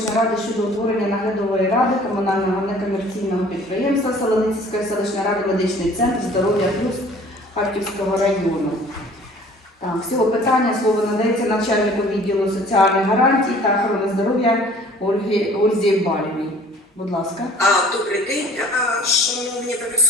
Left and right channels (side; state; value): both; normal; correlation 0.51